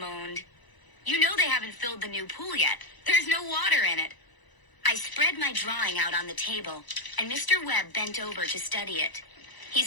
"You know they haven't filled the new pool yet. There's no water in it." I spread my drawing out on the table, and Mr. Webb bent over to study it. He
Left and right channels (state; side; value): late; right; 1.0 ms